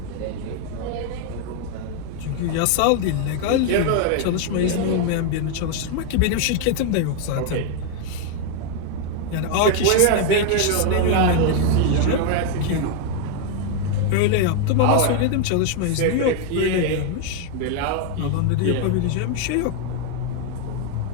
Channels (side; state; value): both; different; correlation 0.01